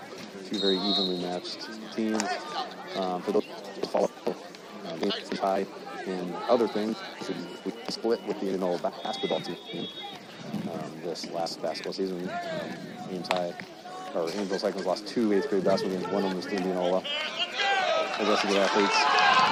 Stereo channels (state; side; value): identical; both; correlation 1.00